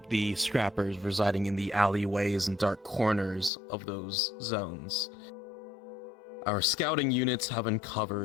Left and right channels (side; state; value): right; drops out; at 3.5 s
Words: the scrappers residing in the alleyways and dark corners of those zones, our scouting units have